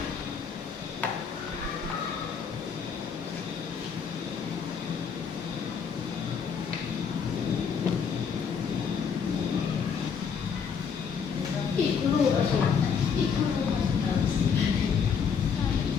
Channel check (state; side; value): quieter; right; 6.5 dB